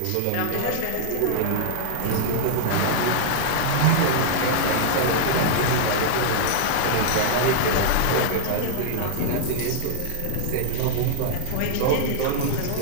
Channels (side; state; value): both; different; correlation -0.01